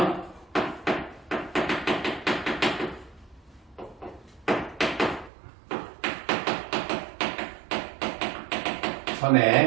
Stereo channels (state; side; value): drops out; left; at 5.3 s